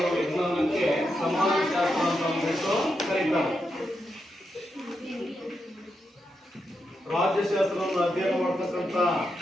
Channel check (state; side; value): normal; both; correlation 0.85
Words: ವಿಜ್ಞಾನಕ್ಕೆ ಸಮಾಜಶಾಸ್ತ್ರ ಅಂತ ಅಂದ್ಬಿಟ್ಟು ಕರೀತಾರೆ. ರಾಜ್ಯಶಾಸ್ತ್ರವನ್ನು ಅಧ್ಯಯನ ಮಾಡತಕ್ಕಂತ